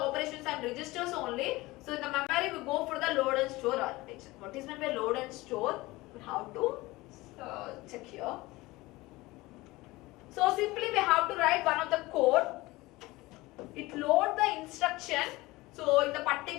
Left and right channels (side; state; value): right; quieter; 20.4 dB